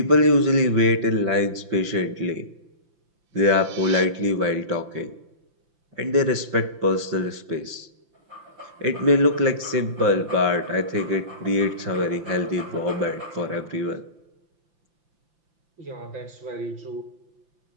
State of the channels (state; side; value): late; left; 5.8 ms